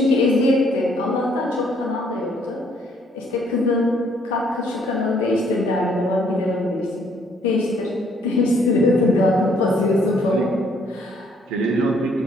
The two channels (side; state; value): both; normal; correlation 0.66